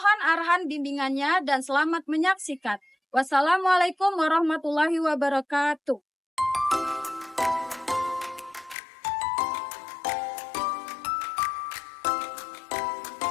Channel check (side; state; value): right; drops out; at 8.8 s